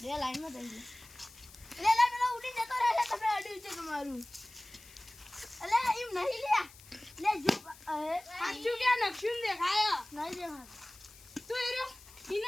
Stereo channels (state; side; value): noise; left; hiss, 21 dB below the sound